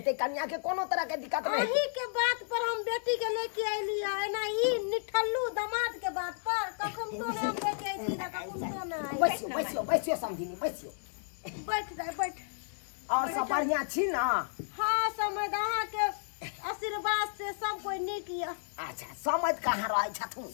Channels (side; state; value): right; silent; digital silence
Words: कन्या के कोनो तरह के दिक्कत नहीं अही के बात पर हम बेटी के लेके आइली है ना ई निठल्लू दामाद के बात पर कखन तो ना हम लेके आइली ना कखन तो ना बैसियो समझिनी बैसियो बैठ जाए बैठ और सब बढ़िया छी ना हां समझ अहाँ के आशीर्वाद से सब कोई नीक या अच्छा समझ कहां रहै छथुन